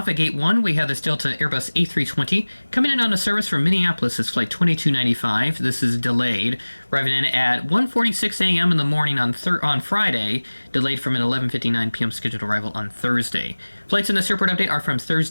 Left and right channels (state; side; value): inverted; both; correlation -1.00